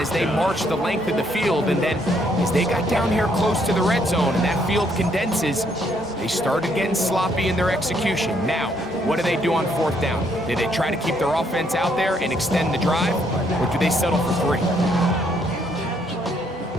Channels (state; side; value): normal; both; correlation 0.70